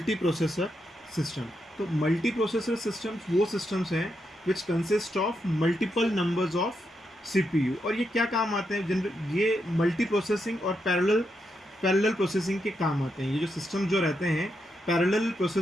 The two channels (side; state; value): both; normal; correlation 0.83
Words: processor system. तो मल्टी प्रोसेसर सिस्टम्स वो सिस्टम्स हैं which consist of multiple numbers of CPU. और ये क्या काम आते हैं? जनरल ये मल्टी प्रोसेसिंग और पैरेलल प्रोसेसिंग के काम आते हैं। ये जो सिस्टम जो रहते हैं पैरेलल